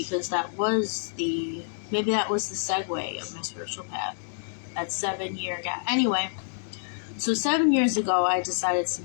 that was the segue of my spiritual path, that 7-year gap. Anyway, so 7 years ago, I decided to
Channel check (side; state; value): right; silent; digital silence